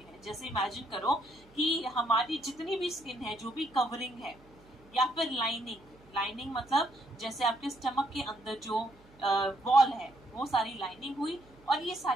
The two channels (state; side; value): noise; right; hum, 26 dB below the sound